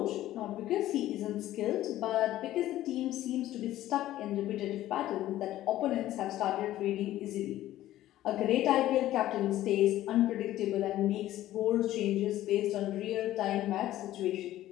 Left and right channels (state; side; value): quieter; right; 14.1 dB